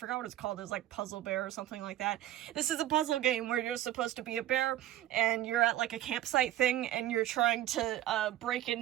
what it's called, it was like Puzzle Bear or something like that. This is a puzzle game where you're supposed to be a bear, and you're at like a campsite thing, and you're trying to break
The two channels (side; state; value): left; quieter; 13.3 dB